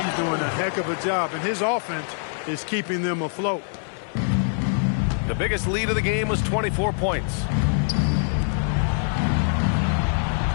doing a heck of a job, and his offense is keeping them afloat. The biggest lead of the game was 24 points.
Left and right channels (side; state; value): right; silent; 58 dB below the other